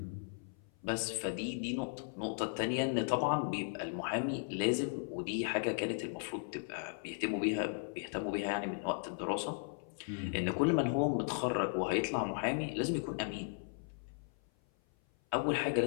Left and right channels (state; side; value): silent; right; 53 dB below the other